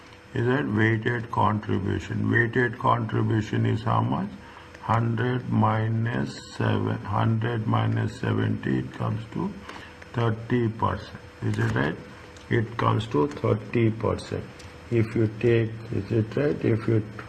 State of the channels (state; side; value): identical; both; correlation 1.00